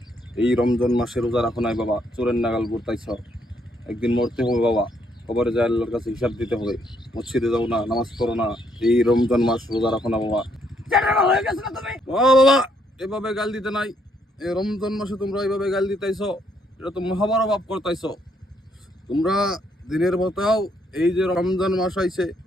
এই রমজান মাসে রোজা রাখো নাই বাবা, চোরের নাগাল করতাইছ। একদিন মরতে হবে বাবা, কবরে যায় আল্লাহর কাছে হিসাব দিতে হবে। মসজিদে যাও না, নামাজ পড়ো না, এই রমজান মাস রোজা রাখো না বাবা। ভালো হয়ে গেছে না তুমি? ও বাবা, এভাবে গাল দিতে নাই। এই রমজান মাসে তোমরা এইভাবে গাল দিতেছ, এটা তো মহাবড় পাপ করতেছ। তোমরা দিনের মতাও এই যে রমজান মাস আইছে,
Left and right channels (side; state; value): both; normal; correlation 0.72